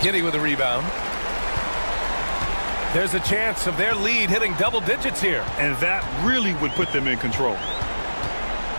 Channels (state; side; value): inverted; both; correlation -1.00